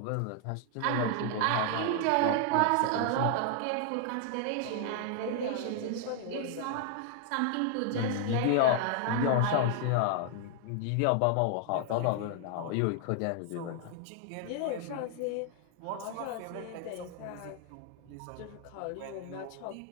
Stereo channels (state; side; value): different; both; correlation 0.00